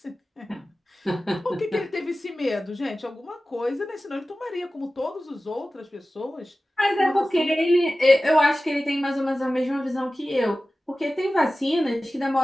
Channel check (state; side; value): normal; both; correlation 0.96